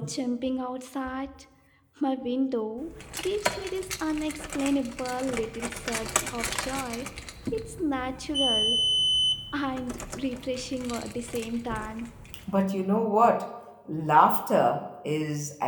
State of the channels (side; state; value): both; identical; correlation 1.00